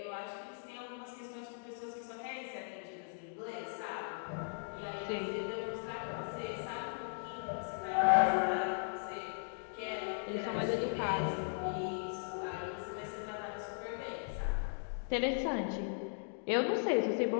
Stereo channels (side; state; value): right; silent; digital silence